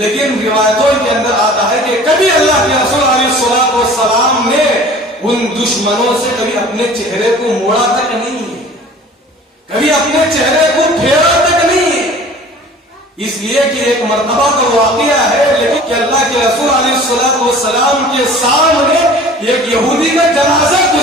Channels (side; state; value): both; normal; correlation 0.45